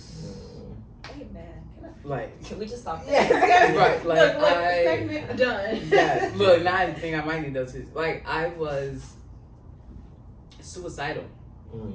Amen. Can we just stop there? Yes. Right. Like, look, segment done. Yeah. Look, now I think I might need those two. Like, I was suicidal.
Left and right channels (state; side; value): identical; both; correlation 1.00